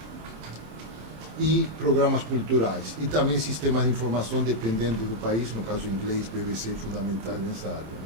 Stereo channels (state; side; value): late; left; 26 ms